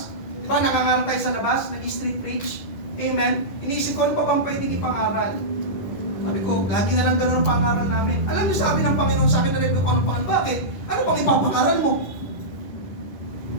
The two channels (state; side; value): late; right; 10 ms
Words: di ba nangangaral tayo sa labas, nag-street preach, amen, iniisip ko ano pa bang pwedeng ipangaral. Sabi ko, lagi na lang gano'n ang pangaral namin. Alam niyo, sabi ng Panginoon sa akin, na-review ko anong pangaral. Bakit? Ano pang ipapangaral mo?